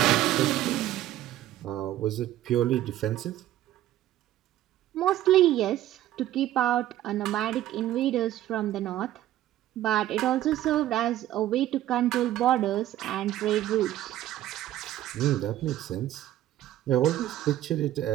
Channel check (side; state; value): left; quieter; 13.5 dB